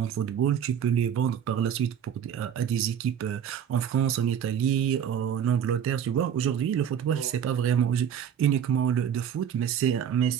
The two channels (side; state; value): left; quieter; 8.8 dB